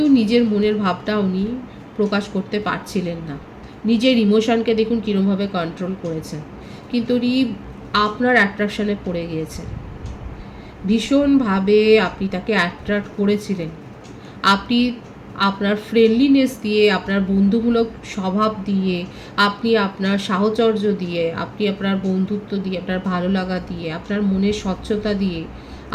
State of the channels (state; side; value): identical; both; correlation 1.00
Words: নিজের মনের ভাবটা উনি প্রকাশ করতে পারছিলেন না। নিজের ইমোশনকে দেখুন কীরকমভাবে কন্ট্রোল করেছেন, কিন্তু উনি আপনার অ্যাট্রাকশানে পড়ে গিয়েছেন। ভীষণভাবে আপনি তাকে অ্যাট্রাক্ট করেছিলেন। আপনি আপনার ফ্রেন্ডলিনেস দিয়ে, আপনার বন্ধুমূলক স্বভাব দিয়ে, আপনি আপনার সাহচর্য দিয়ে, আপনি আপনার বন্ধুত্ব দিয়ে, আপনার ভালো লাগা দিয়ে, আপনার মনের স্বচ্ছতা দিয়ে